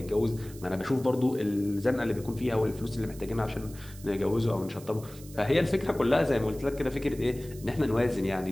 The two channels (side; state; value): right; noise; hiss, 19 dB below the sound